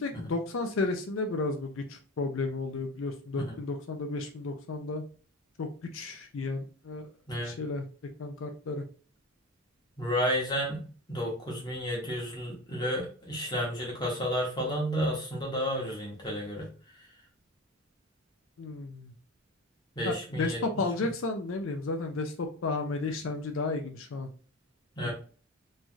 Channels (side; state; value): both; normal; correlation 0.28